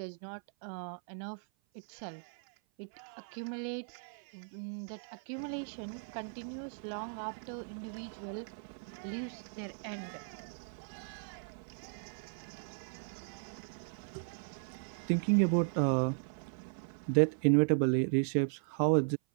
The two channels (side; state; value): left; silent; 53 dB below the other